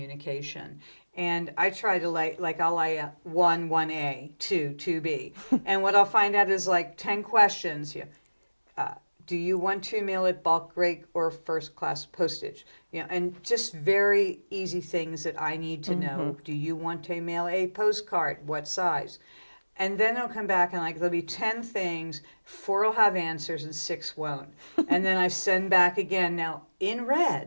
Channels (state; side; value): inverted; both; correlation -1.00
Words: And I try to I'll lay 1A, 2B. And what I'll find out is 10 questions. Do you want to mail it bulk rate or first class postage? And just very easy things that I need to know. Do you want to mail a postcard? What size? And then it'll come back and there'll be 10 things, 4 will have answers and 6 won't. And then I send back again now in